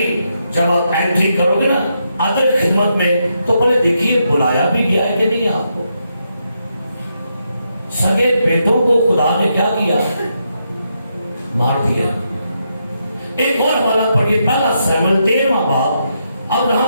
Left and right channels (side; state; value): both; inverted; correlation -0.81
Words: جب آپ انٹری کرو گے نا ادر خدمت میں تو پہلے دیکھیے بلایا بھی گیا ہے کہ نہیں آپ کو. سگے بیٹوں کو خدا نے کیا کیا مار دیا. ایک اور حوالہ پڑھیے پہلا سیموئیل 13واں باب. اب